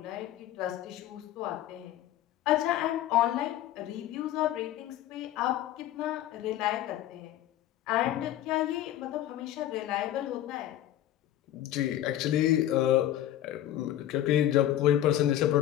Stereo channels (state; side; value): quieter; right; 12.7 dB